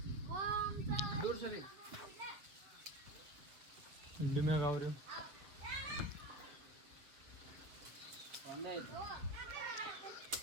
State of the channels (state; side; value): late; left; 7.0 ms